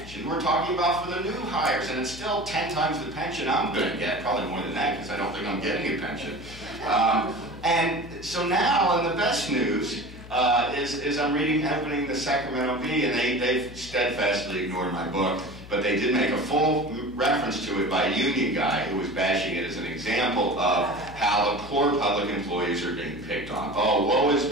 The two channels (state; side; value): noise; left; hum, 16 dB below the sound